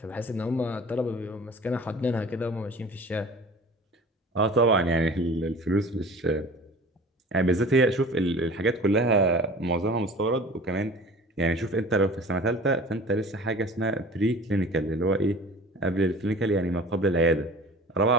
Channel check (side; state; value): both; normal; correlation 0.42